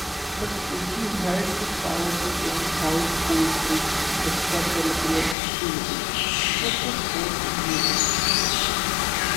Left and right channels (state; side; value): drops out; right; at 5.4 s